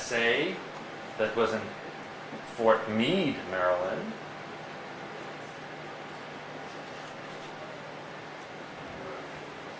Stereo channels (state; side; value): identical; both; correlation 1.00